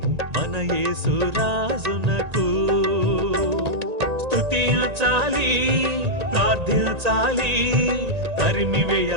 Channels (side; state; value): left; late; 1.9 ms